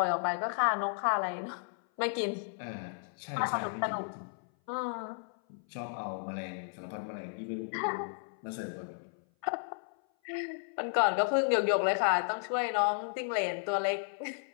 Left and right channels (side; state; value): right; silent; 55 dB below the other